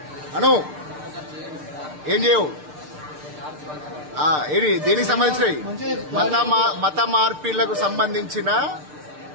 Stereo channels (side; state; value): left; late; 6.7 ms